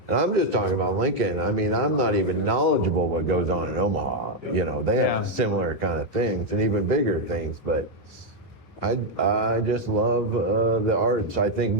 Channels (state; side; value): normal; both; correlation 0.03